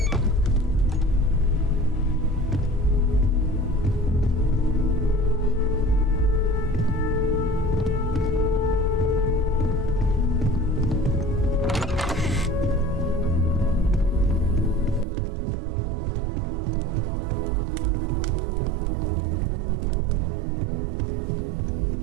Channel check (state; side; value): drops out; left; at 15.1 s